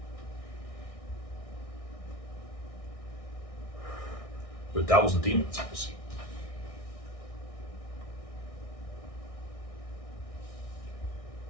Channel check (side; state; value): right; late; 1.6 ms